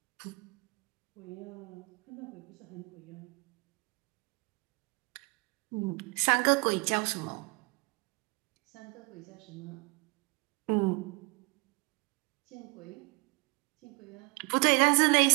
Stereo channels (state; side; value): quieter; left; 28.6 dB